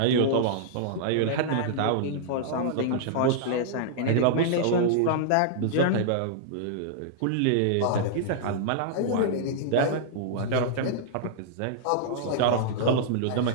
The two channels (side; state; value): both; different; correlation -0.02